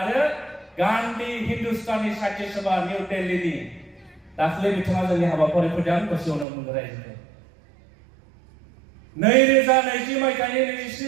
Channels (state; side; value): drops out; left; at 6.5 s